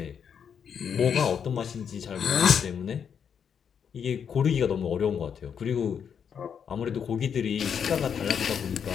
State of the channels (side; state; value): right; quieter; 7.5 dB